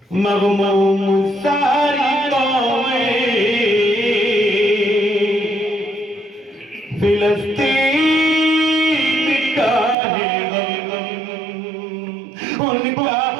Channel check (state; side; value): drops out; left; at 10.0 s